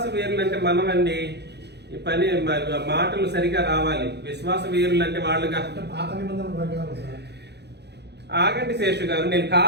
వీరులు అంటే మనమండి. ఈ పని మాటలు సరిగా రావాలి. విశ్వాస వీరులు అంటే వాళ్ళుగా. ఆగండి శేషు గారు, నేను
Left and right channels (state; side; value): late; left; 0.49 ms